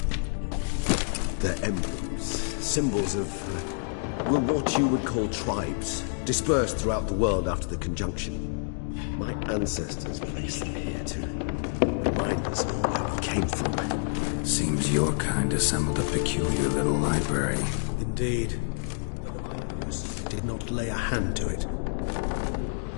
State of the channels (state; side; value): silent; right; digital silence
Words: They're emblems, symbols of, well, what you would call tribes, dispersed throughout the world after the conjunction. My ancestors placed them here to remind us of where we came from. Seems your kind assembled a peculiar little library. Indeed, though I personally did not lay a hand to it.